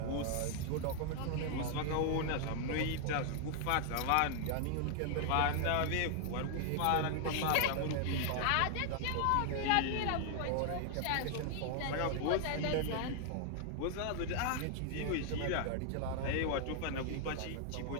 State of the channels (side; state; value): both; different; correlation 0.00